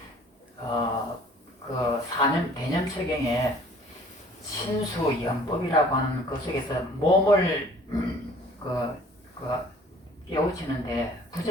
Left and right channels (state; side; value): normal; both; correlation 0.53